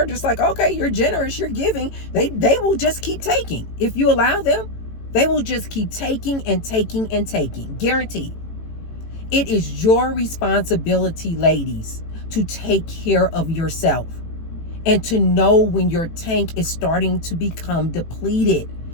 just like, okay, you're generous, you're giving. They will just keep taking. If you allow them, they will just keep taking and taking and taking. Guaranteed. It is your responsibility, ladies, to take care of yourself and to know when your tank is starting to become depleted.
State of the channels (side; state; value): right; late; 18 ms